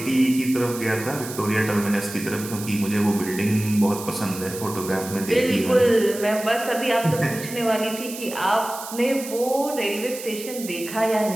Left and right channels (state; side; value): noise; right; hiss, 11 dB below the sound